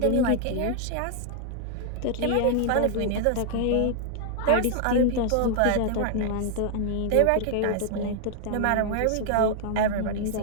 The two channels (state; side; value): different; both; correlation -0.01